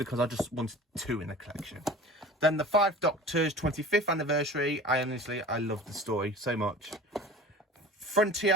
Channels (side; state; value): both; normal; correlation 0.40